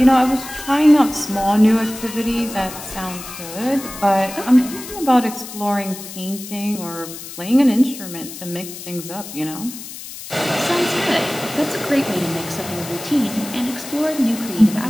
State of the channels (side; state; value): left; noise; hiss, 12 dB below the sound